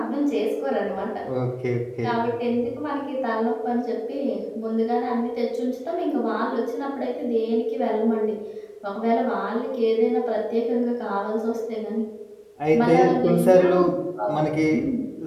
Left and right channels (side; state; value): both; identical; correlation 1.00